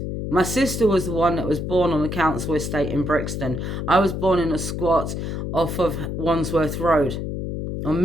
My sister was the one that was born on the council estate in Brixton. I was born in a squat off of Wandsworth Road on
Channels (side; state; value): left; noise; hum, 4 dB below the sound